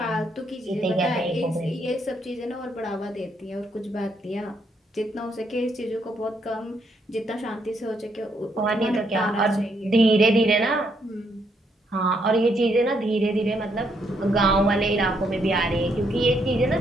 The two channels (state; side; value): normal; both; correlation 0.74